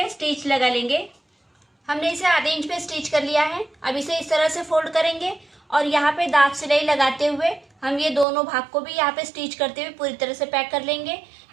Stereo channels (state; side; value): drops out; left; at 8.2 s